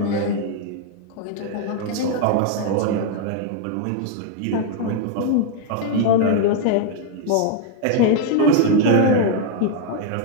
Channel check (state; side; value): different; both; correlation 0.00